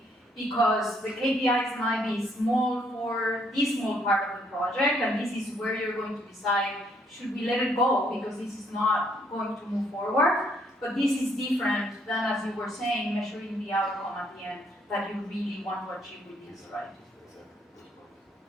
because the KPIs might be small for this small part of the project, and this is where you're going to decide, should we let it go because this is not going to move forward? But this is different than, as you were saying, measuring the outcome at the end that you really want to achieve with this, right?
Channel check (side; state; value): both; normal; correlation 0.69